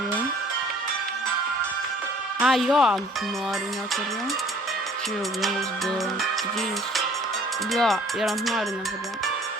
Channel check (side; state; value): both; normal; correlation 0.54